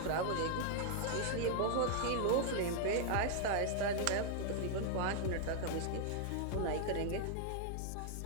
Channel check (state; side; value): different; both; correlation 0.00